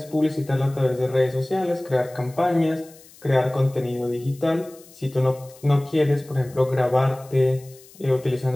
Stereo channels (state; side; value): noise; left; hiss, 24 dB below the sound